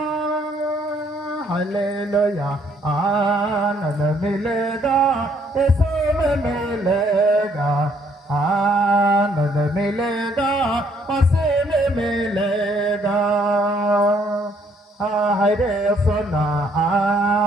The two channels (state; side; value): normal; both; correlation 0.66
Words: हालेलुया आनंद मिलेगा यीशु में मिलेगा आनंद मिलेगा उसी में मिलेगा हरे सोना